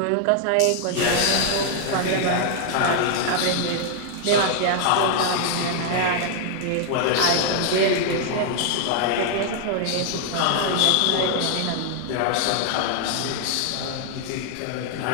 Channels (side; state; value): both; different; correlation 0.00